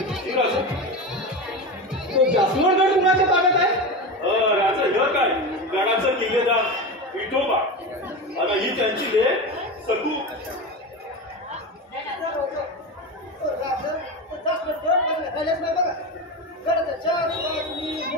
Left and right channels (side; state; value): both; normal; correlation 0.22